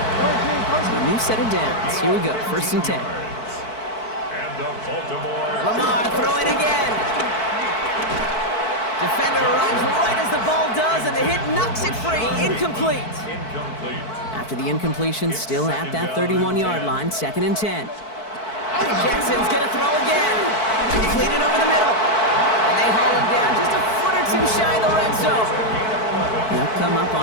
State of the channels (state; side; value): late; right; 4.6 ms